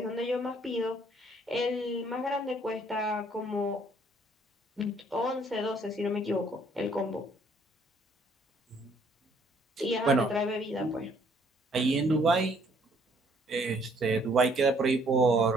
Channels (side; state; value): both; normal; correlation 0.64